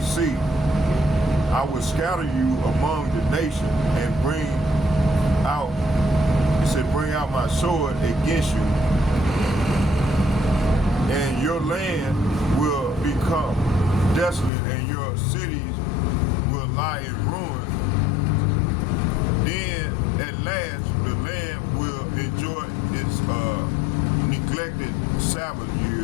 see. I will scatter you among the nations and bring out my sword against you, and your land will become desolate, and your cities will lie in ruins. Then at last the land will enjoy its neglected Sabbath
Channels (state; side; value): drops out; right; at 14.5 s